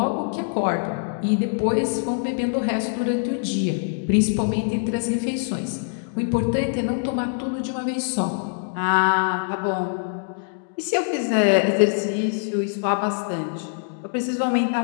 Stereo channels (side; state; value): right; silent; digital silence